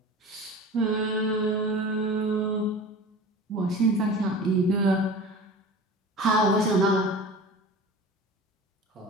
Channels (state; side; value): normal; both; correlation 0.36